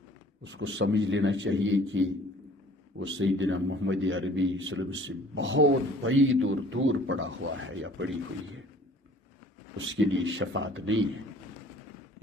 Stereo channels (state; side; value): normal; both; correlation 0.52